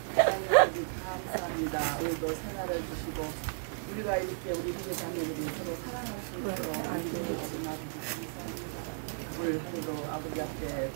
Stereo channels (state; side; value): silent; left; digital silence